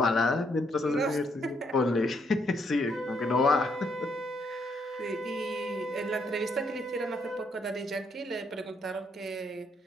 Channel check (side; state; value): both; normal; correlation 0.73